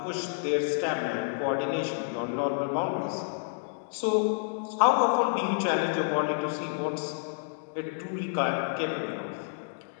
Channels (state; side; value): silent; right; digital silence